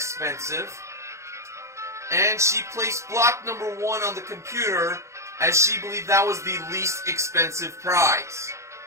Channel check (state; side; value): late; left; 0.14 ms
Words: And she placed block number 1 on the computer, as she believed that was the least expensive prize.